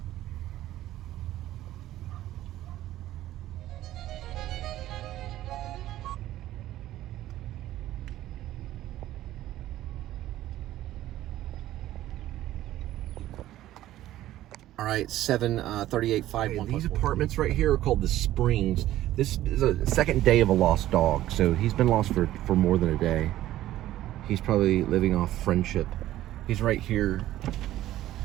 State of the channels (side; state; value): left; quieter; 14.1 dB